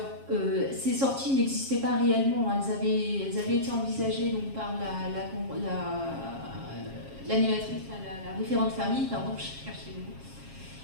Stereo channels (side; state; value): left; late; 7.4 ms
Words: ces sorties n'existaient pas réellement. Elles avaient été envisagées donc, par l'animatrice, la référente famille, pardon, je cherchais le mot.